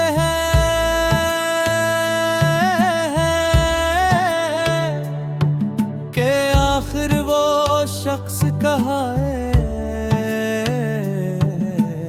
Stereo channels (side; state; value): both; identical; correlation 1.00